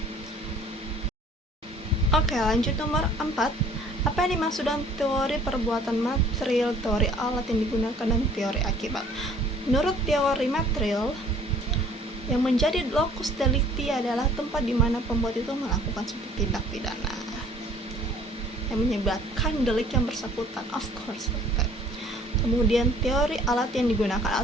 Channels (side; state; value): both; normal; correlation 0.54